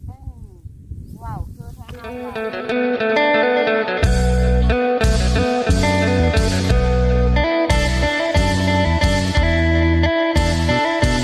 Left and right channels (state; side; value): identical; both; correlation 1.00